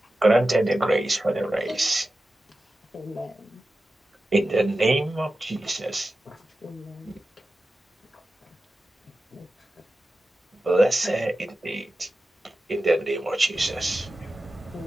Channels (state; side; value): normal; both; correlation 0.93